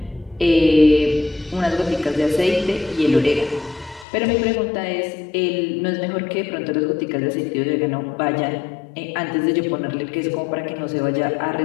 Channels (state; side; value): drops out; right; at 4.0 s